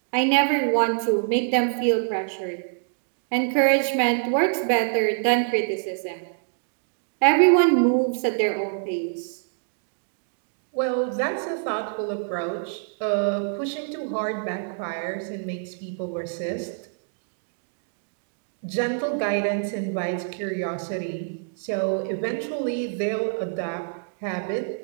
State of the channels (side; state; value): left; silent; digital silence